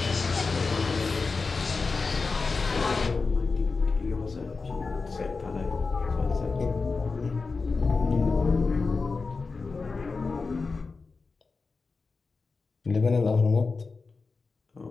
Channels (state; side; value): quieter; right; 4.3 dB